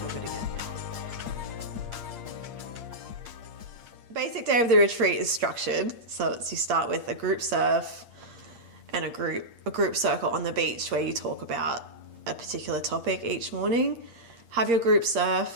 good again now. Basic day of the retreat is structured. So it's, you start with a group surf and a group circle on the beach where you talk about a particular topic each morning. Have your group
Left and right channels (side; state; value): left; late; 8.6 ms